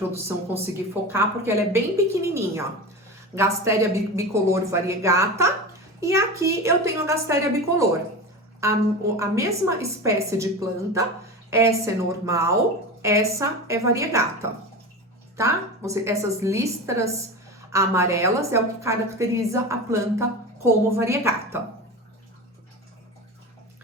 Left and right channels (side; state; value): both; normal; correlation 0.27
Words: conseguir focar, porque ela é bem pequenininha. Gasteria bicolor variegata. E aqui eu tenho a Gasteria bicolor. A mesma espécie de planta. Essa é normal essa é variegata, tá? Essas listras amarelas é o que caracteriza a planta como variegata.